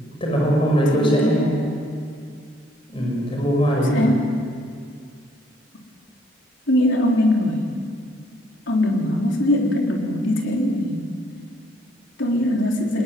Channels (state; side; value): normal; both; correlation 0.66